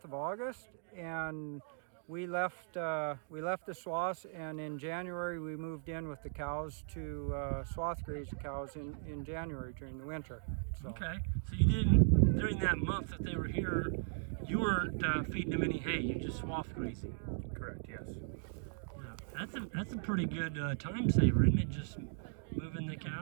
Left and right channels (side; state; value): left; silent; digital silence